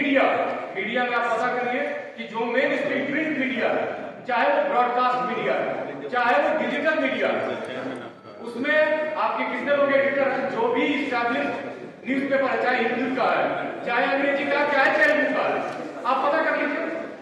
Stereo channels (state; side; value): identical; both; correlation 1.00